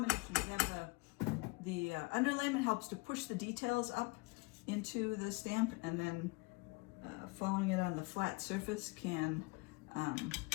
We have the underlayment helps to push the details up into the stamp, and then following it on the flat surface can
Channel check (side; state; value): right; quieter; 26.8 dB